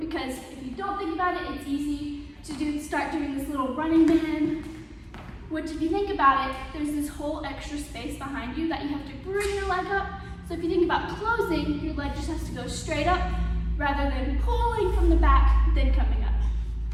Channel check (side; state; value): both; identical; correlation 1.00